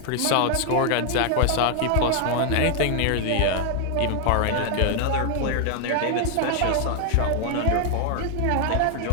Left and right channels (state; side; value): different; both; correlation 0.00